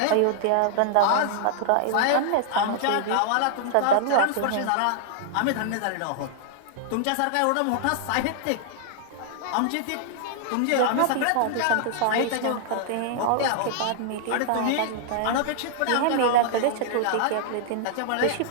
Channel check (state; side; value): different; both; correlation -0.01